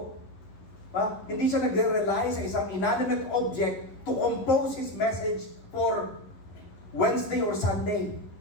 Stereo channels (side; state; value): right; late; 11 ms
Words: Hindi siya nagre-rely sa isang inanimate object to compose his message for Wednesday or Sunday.